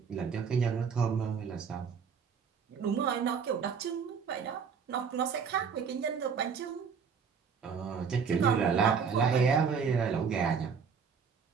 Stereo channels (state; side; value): quieter; left; 6.3 dB